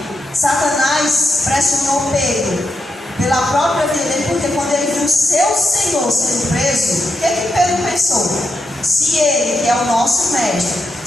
Satanás pressionou Pedro pela própria vida dele, porque quando ele viu seu Senhor sendo preso, o que Pedro pensou? Se ele, que é o nosso mestre,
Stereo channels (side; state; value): both; normal; correlation 0.85